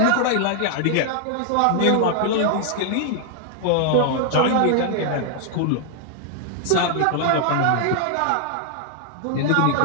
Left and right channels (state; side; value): different; both; correlation 0.00